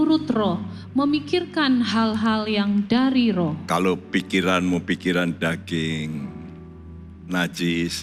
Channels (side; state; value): both; identical; correlation 1.00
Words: roh memikirkan hal-hal yang dari roh. Kalau pikiranmu pikiran daging,